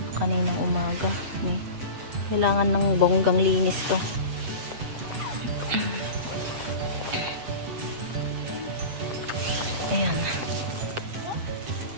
kaninang umaga. Kailangan ng bonggang linis to. Ayan.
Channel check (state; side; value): late; left; 8.1 ms